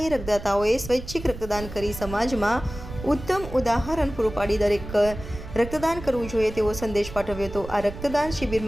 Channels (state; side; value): noise; right; rumble, 11 dB below the sound